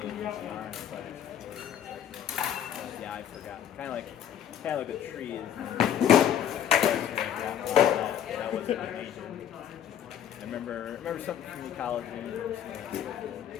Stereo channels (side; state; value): right; quieter; 9.7 dB